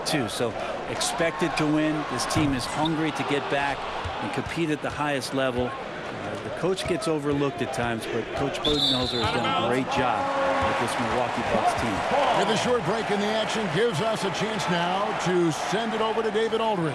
too. So expected to win. This team is hungry to get back and compete at the highest level. The coach gets overlooked at times, but Coach Budenholzer has done a great job with this Milwaukee Bucks team. With a short break in the action gives us a chance now to send it over to David Aldridge.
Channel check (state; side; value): identical; both; correlation 1.00